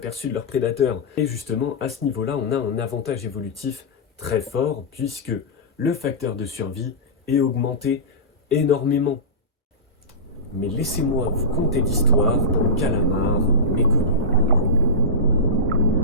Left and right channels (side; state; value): both; normal; correlation -0.17